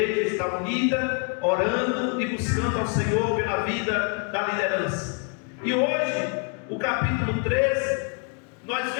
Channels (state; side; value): quieter; right; 39.6 dB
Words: estar unida, orando e buscando ao Senhor pela vida da liderança. E hoje, o capítulo 13, nós